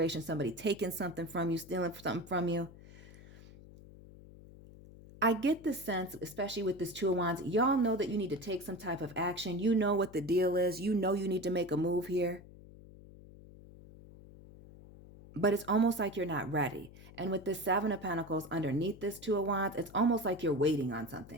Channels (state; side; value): noise; left; hum, 19 dB below the sound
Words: somebody taking something from you, stealing something from you. I get the sense, especially with this Two of Wands, y'all know that you need to take some type of action. You know what the deal is. You know you need to make a move here. But it's almost like you're not ready. And with this Seven of Pentacles underneath this Two of Wands, it's almost like you're waiting on